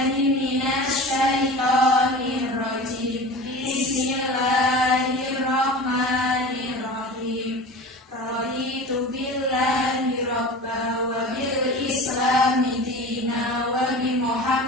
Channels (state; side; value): normal; both; correlation 0.35